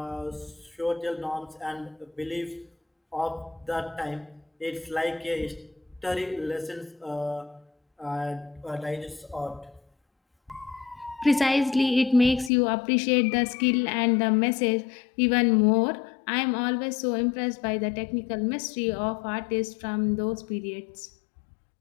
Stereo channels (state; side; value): drops out; right; at 12.5 s